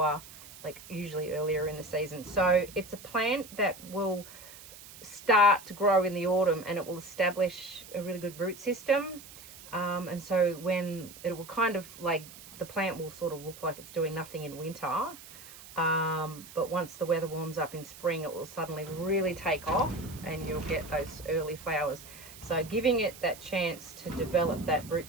like usually earlier in the season. So it's a plant that will start to grow in the autumn, and it will establish a really good root system, and so when it will kind of like, the plant will sort of look like it's doing nothing in winter, but once the weather warms up in spring, it will suddenly really take off, and you'll get those early flowers. So giving it that chance to develop that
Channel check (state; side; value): noise; right; hiss, 17 dB below the sound